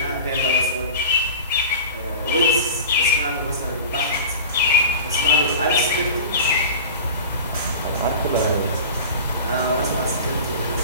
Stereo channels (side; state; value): both; inverted; correlation -0.35